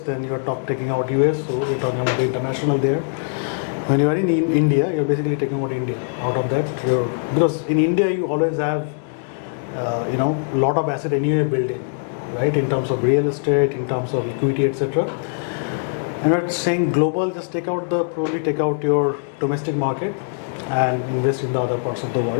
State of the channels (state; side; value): silent; right; 64 dB below the other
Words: then you're taking out US, so you're talking about the international there. When you are in India, you're basically taking out India out of that. Because in India you always have a lot of asset anyway building, right? In terms of real estate, in terms of equity, etc. And we're saying global, just probably take out your domestic market and invest in the other parts of the